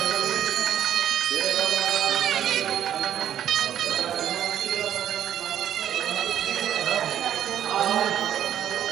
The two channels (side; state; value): left; quieter; 10.4 dB